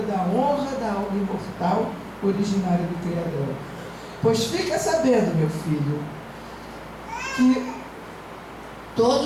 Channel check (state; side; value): identical; both; correlation 1.00